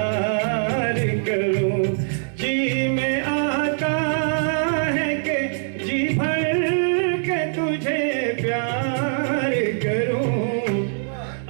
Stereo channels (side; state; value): left; silent; 62 dB below the other